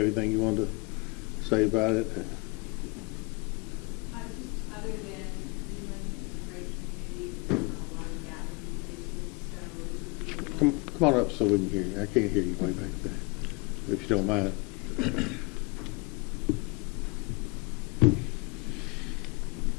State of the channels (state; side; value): quieter; right; 28.7 dB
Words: anything you wanted to say about it? Just other than Greenland is a great community, there's not a lot of gathering places, so Come on up so we can hear you. I can't hear you way back there, if you don't mind.